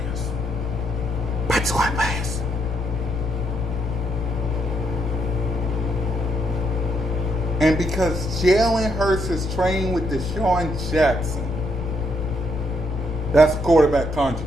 By squad players. And because Jalen Hurts is training with Deshaun Jackson, that's a quarterback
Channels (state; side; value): noise; left; rumble, 10 dB below the sound